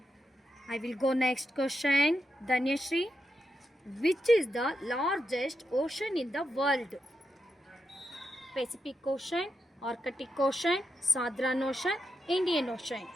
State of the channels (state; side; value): normal; both; correlation 0.85